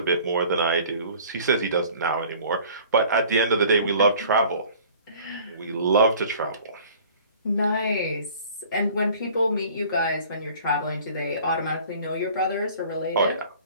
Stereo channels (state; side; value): inverted; both; correlation -0.49